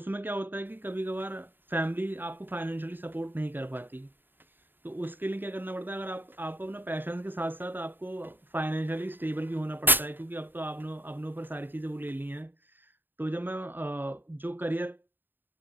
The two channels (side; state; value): left; late; 0.094 ms